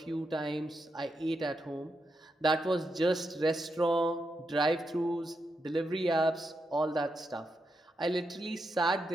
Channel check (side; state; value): both; normal; correlation 0.84